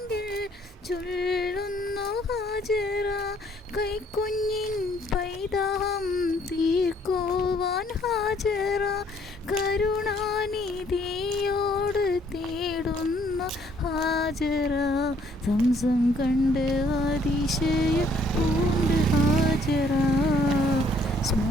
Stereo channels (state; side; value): normal; both; correlation 0.64